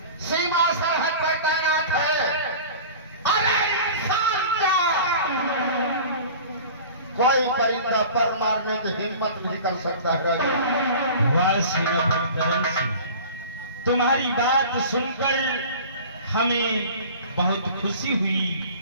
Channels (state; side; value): inverted; both; correlation -0.39